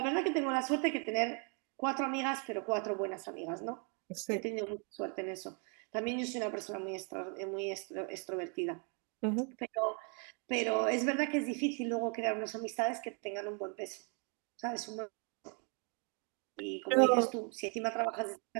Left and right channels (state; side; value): quieter; left; 37.5 dB